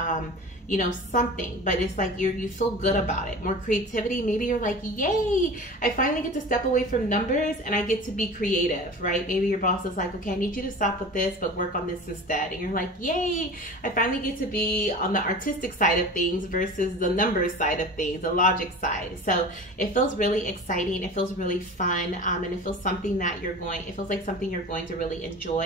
something, but it's like you feel good about it. More creativity. Maybe you're like, yay, I finally get to step away from numbers and I get to be creative, right? Maybe your boss is like, okay, I need you to stop with this, but work on this instead. And you're like, yay, I finally get to be on the artistic side of things versus the numbers side of things, the logic side. So it feels really exciting. It feels really fun. And it feels something that it feels like something you're going to really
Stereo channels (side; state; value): both; normal; correlation 0.36